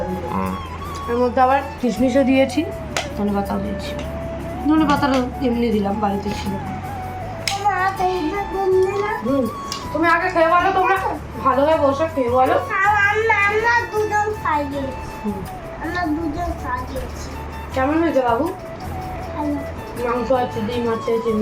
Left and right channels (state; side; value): identical; both; correlation 1.00